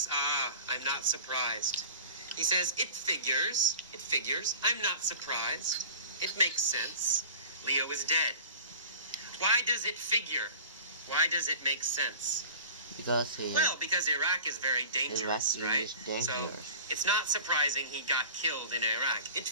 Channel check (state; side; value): inverted; both; correlation -0.40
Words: I'm not surprised. He says, it figures, I'm not surprised. It makes sense. Leo is dead. Why does it figure? Why does it make sense? Because Iraq is very dangerous, right? So it's not surprising he got killed in Iraq. It